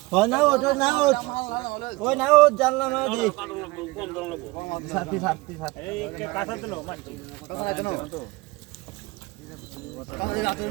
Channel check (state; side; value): quieter; left; 22.3 dB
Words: হয় না ওঠ না ওঠ ওই না ওঠ জানলা না দি কম দাম লাগবো ছাতি ছাতি ছাতি এই কাঁচা দিল মাছ কাঁচা দেন কাঁচা রাত